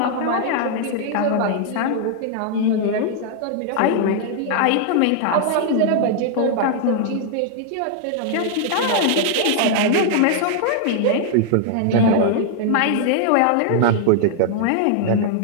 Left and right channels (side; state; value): both; different; correlation -0.01